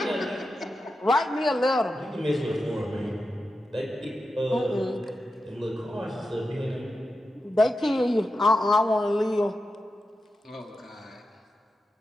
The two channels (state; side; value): normal; both; correlation 0.90